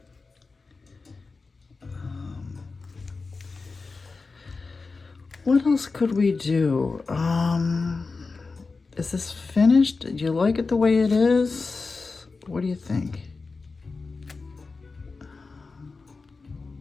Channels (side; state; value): right; quieter; 4.1 dB